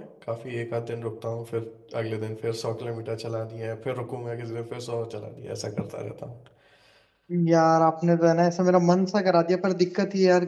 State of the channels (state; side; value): identical; both; correlation 1.00